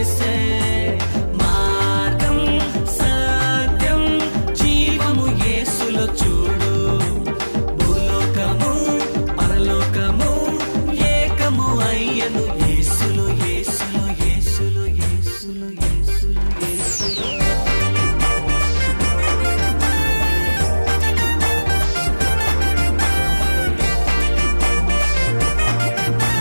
మార్గం సత్యం జీవము యేసులో చూడు. భూలోకము పరలోకము ఏకము అయ్యను యేసులో, యేసులో, యేసులో, యేసులో, యేసులో, యేసులో.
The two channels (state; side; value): inverted; both; correlation -1.00